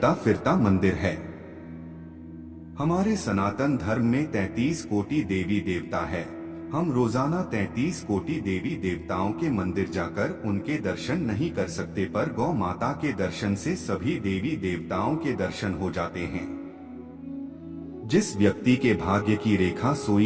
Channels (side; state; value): both; identical; correlation 1.00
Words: फिरता मंदिर है। हमारे सनातन धर्म में 33 कोटि देवी देवता है, हम रोजाना 33 कोटि देवी देवताओं के मंदिर जाकर उनके दर्शन नहीं कर सकते, पर गौ माता के दर्शन से सभी देवी देवताओं के दर्शन हो जाते हैं। जिस व्यक्ति के भाग्य की रेखा